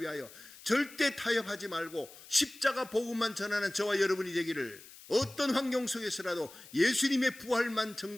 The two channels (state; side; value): noise; left; hiss, 19 dB below the sound